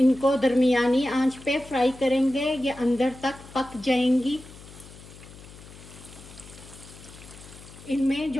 दरमियानी आंच पे फ्राई करेंगे ये अंदर तक पक जाएंगी। इनमें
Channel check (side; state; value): left; noise; hum, 18 dB below the sound